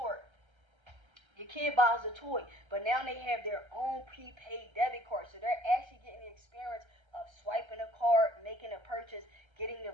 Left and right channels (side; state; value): left; late; 1.3 ms